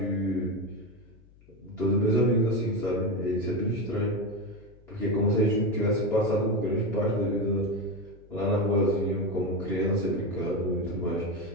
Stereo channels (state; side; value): noise; left; hum, 26 dB below the sound